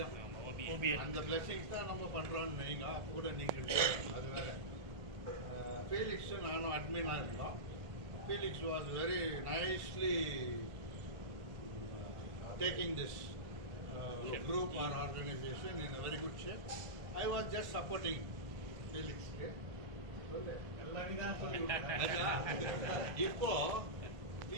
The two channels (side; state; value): left; late; 1.7 ms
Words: அந்த பிளெஸிங்ஸ் தான் நம்ம பண்ணுறோன்னு நீங்கள் அப்போ கூட நீங்கள் அது வேறு. ஃபீலிக்ஸும் நானும் அட்மினாக இருந்தோம். Felix was very nicely taking this group or organization in a very good shape. I was just supporting Felix. இப்போ